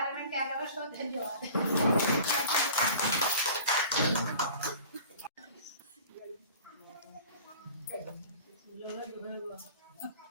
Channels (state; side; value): inverted; both; correlation -0.44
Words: में क्या करूँ, सो धन्यवाद।